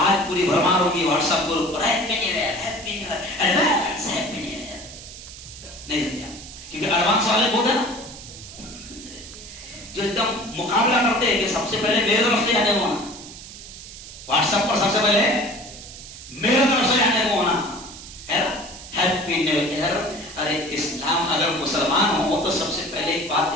پوری بھرمار ہوگی واٹس ایپ گروپ پر happy new year, happy new year, advance happy new year. نہیں سمجھا؟ کیونکہ ایڈوانس والے بہت ہیں نا جو ایک دم مقابلہ کرتے ہیں کہ سب سے پہلے میرے طرف سے آنے کو ہونا. واٹس ایپ پر سب سے پہلے میرے طرف سے آنے کو ہونا ہے نا. Happy new year. ارے اسلام اگر مسلمان ہو تو سب سے پہلے ایک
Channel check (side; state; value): right; noise; hiss, 14 dB below the sound